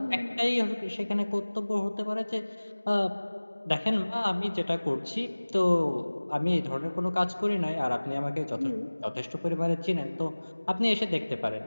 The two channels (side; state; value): both; inverted; correlation -1.00